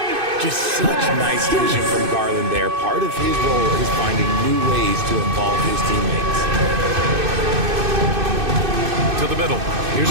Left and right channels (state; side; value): late; left; 2.6 ms